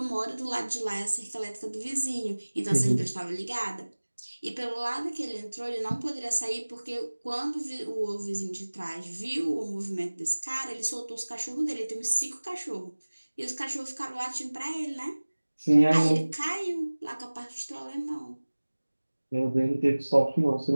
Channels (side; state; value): both; inverted; correlation -1.00